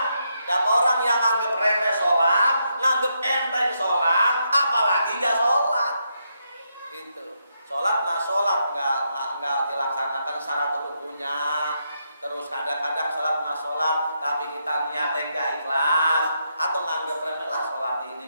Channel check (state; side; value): inverted; both; correlation -0.80